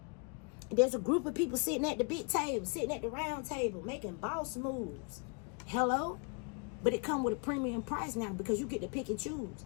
There's a group of people sitting at the big table, sitting at the round table, making boss moves. Hello? But it come with a premium price now because you get to pick and choose.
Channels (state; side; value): quieter; right; 36.9 dB